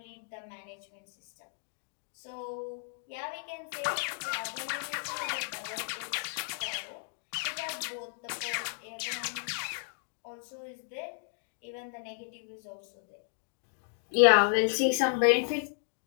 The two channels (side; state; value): right; silent; digital silence